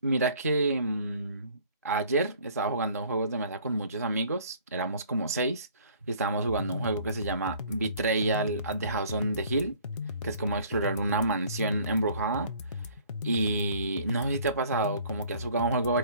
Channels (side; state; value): both; inverted; correlation -0.55